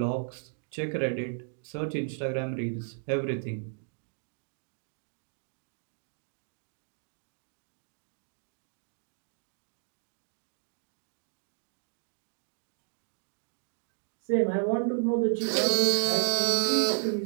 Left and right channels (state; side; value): silent; left; digital silence